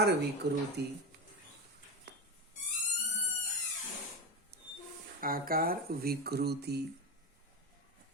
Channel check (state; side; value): normal; both; correlation 0.18